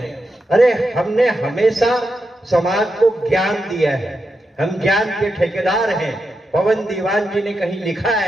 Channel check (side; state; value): both; normal; correlation 0.86